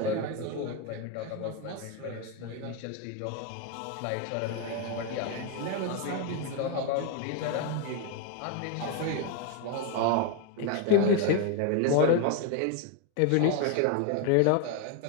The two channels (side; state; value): both; different; correlation 0.01